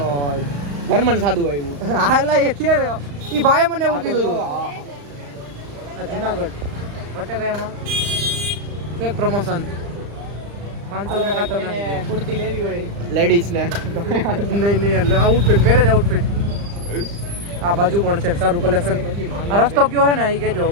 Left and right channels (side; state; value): left; late; 35 ms